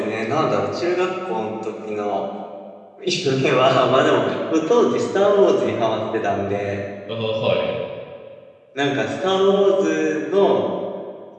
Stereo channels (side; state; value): both; identical; correlation 1.00